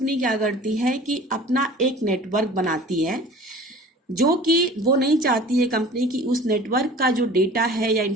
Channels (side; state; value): both; normal; correlation 0.43